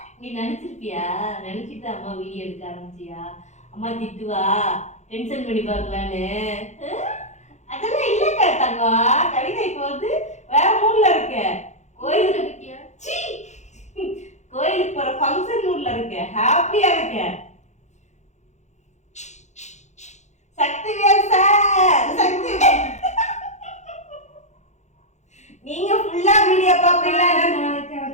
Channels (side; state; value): right; late; 0.33 ms